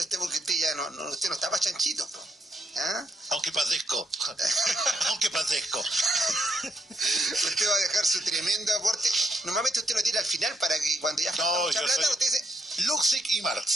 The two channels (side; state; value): both; normal; correlation 0.76